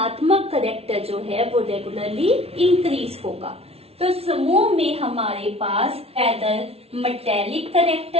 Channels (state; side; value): late; left; 0.29 ms